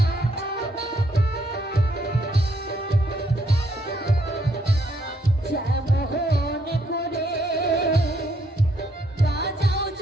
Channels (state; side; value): normal; both; correlation 0.71